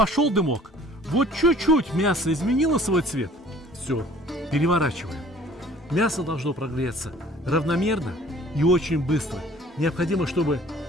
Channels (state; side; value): normal; both; correlation 0.52